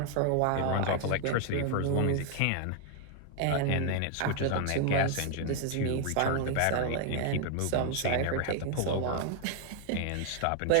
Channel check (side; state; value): both; different; correlation 0.00